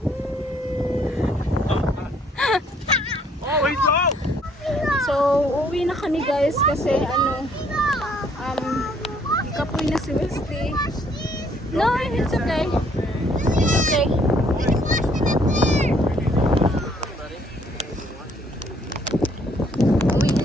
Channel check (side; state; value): both; normal; correlation 0.65